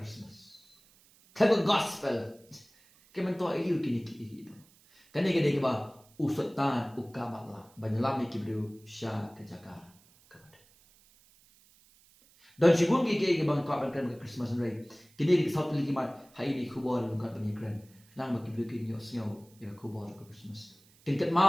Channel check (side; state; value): right; noise; hiss, 29 dB below the sound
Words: Kamen gospel. Kamen to iko kini ki. Kani gede ki ba usutan ukamala banyalam ki brio sha kajaka. Dan sigun ki bang ka ban kan Christmas rai kini di satu lagi mat hai ni kubor lungkat bani kran nang bagi bikin yo snow ya kubor ke Christmas tingkat